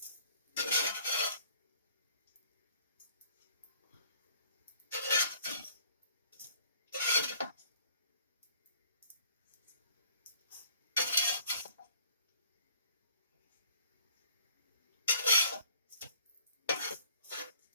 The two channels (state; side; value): inverted; both; correlation -0.57